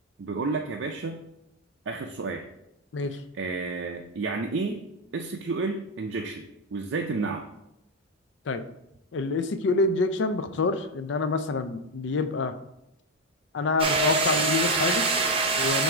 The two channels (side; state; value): both; normal; correlation 0.05